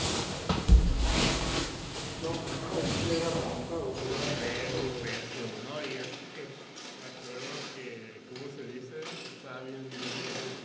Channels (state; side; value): identical; both; correlation 1.00